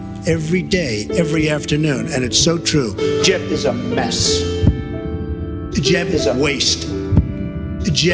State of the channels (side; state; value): both; identical; correlation 1.00